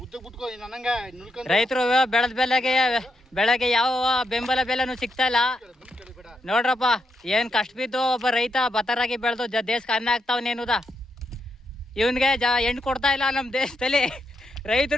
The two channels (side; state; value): both; normal; correlation 0.81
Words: ರೈತರು ಬೆಳೆಗೆ ಯಾವ ಬೆಂಬಲ ಬೆಲೆನೂ ಸಿಗ್ತಾ ಇಲ್ಲ ನೋಡ್ರಪ್ಪ. ಏನ್ ಕಷ್ಟ ಬಿದ್ದು ಒಬ್ಬ ರೈತ ಭತ್ತರಾಗಿ ಬೆಳೆದು ದೇಶಕ್ಕೆ ಅನ್ನ ಆಗ್ತಾವನೇನುದ. ಇವನ್ಗೆ ಹೆಣ್ಣು ಕೊಡ್ತಾ ಇಲ್ಲ ನಮ್ಮ ದೇಶದಲ್ಲಿ.